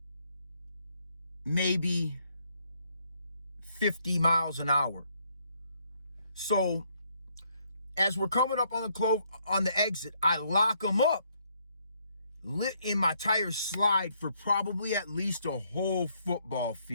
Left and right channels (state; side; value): inverted; both; correlation -0.71